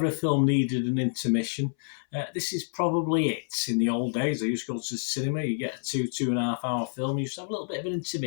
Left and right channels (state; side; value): silent; right; 59 dB below the other